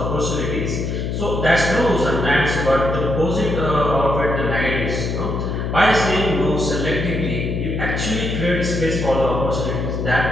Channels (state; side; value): noise; left; hum, 2 dB below the sound